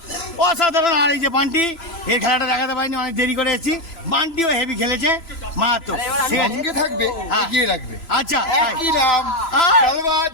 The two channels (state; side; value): late; right; 3.0 ms